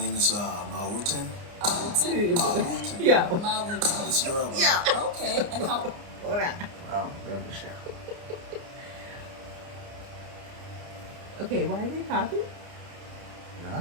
is Mawutin. Awutin? Mawutin. Yeah. Mawutin. It's Yoruba. Yeah. Okay, and how? Hold on. Oh, remember the show. Okay, why are they popping? Yeah,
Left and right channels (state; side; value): late; left; 29 ms